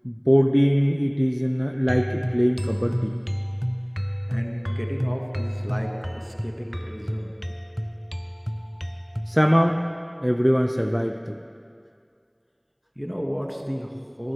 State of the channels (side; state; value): both; identical; correlation 1.00